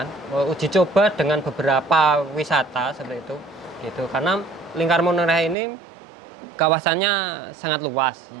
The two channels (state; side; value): drops out; left; at 5.6 s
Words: coba dengan beberapa wisata seperti itu gitu, karena Lingkar Menoreh ini kawasannya sangat luas,